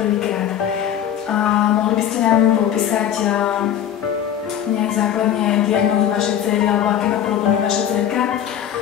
Mohli by ste nám popísať nejak základne diagnózu vašej dcery, alebo aké má problémy vaša dcerka?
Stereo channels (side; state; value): right; quieter; 10.1 dB